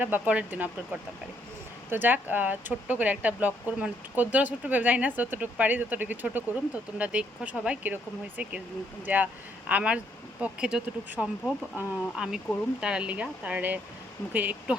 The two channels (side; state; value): both; normal; correlation 0.71